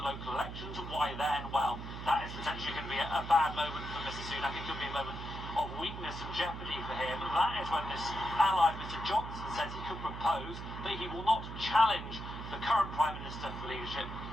local elections. And why then? Well, that is potentially going to be a bad moment for Mr Sunak. It could be a moment of weakness and jeopardy for him. That is when this ally, Mr Johnson, says he could propose that he will not challenge the current Prime Minister for leadership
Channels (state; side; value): noise; right; hum, 8 dB below the sound